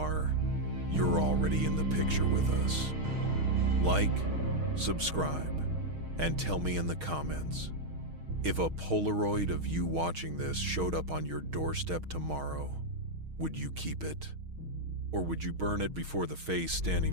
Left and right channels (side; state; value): left; late; 6.4 ms